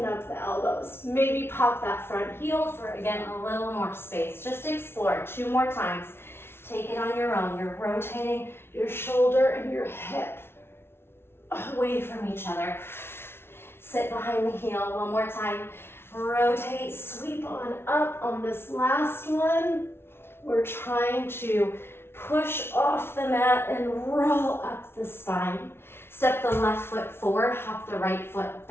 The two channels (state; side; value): late; right; 0.12 ms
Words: up the elbows. Maybe pop that front heel for, again, a little more space. Just explore 2 more times. Take it on your own. You're rotating your shoulder and your hip away from each other. Sit behind the heel 1 more time. Rotate, sweep on up on this last one. We're trying to push off the mat and roll up the spine. Step the left foot forward, hop the right foot